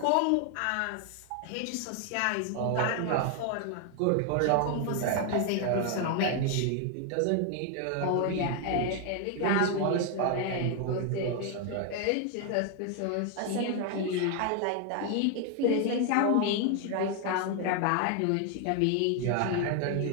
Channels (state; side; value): different; both; correlation 0.01